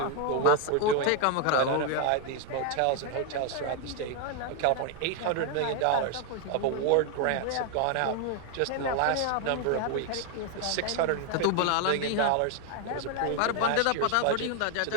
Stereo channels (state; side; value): different; both; correlation 0.00